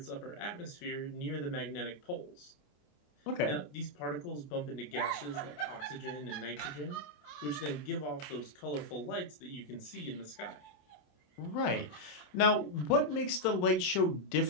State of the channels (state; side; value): late; right; 27 ms